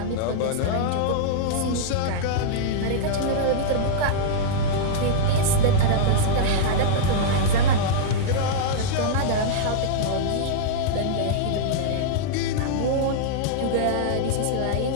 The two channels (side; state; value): both; different; correlation -0.02